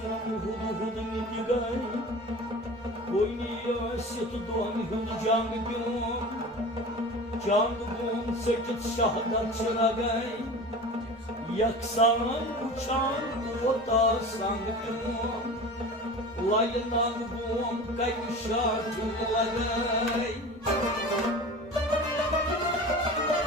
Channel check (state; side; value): normal; both; correlation 0.35